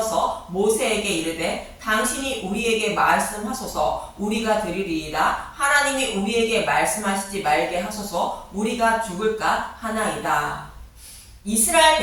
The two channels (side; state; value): both; identical; correlation 1.00